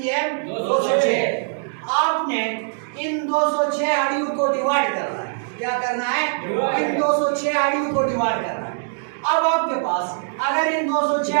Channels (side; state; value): left; silent; digital silence